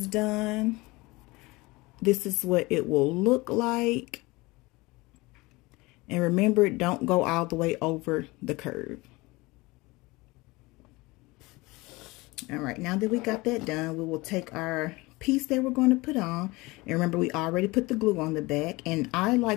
done, this is what it will look like. And remember, don't go all the way over the curve. All right, now that we got that done, we will take our piece that we're going to put on. And remember, we already put the glue on the back. And I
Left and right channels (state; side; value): quieter; right; 22.7 dB